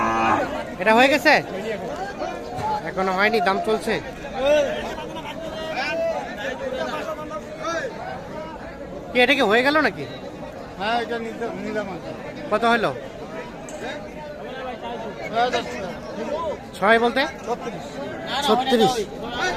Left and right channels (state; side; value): identical; both; correlation 1.00